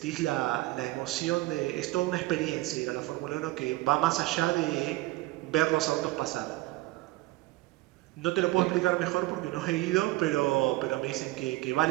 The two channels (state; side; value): quieter; left; 18.7 dB